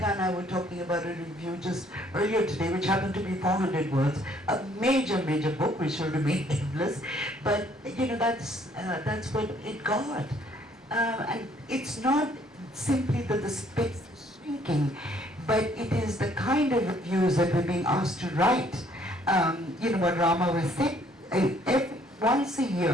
and I were talking about a review just earlier today, which happened to be 400 words, a major book which will remain nameless, but that's what it got. And it's not simply that the space is shrinking, but it is the kind of reviews that we're being asked to write. What Rama was saying, once a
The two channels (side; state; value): both; normal; correlation 0.63